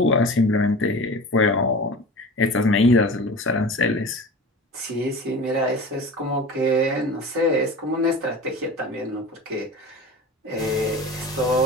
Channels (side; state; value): both; normal; correlation 0.34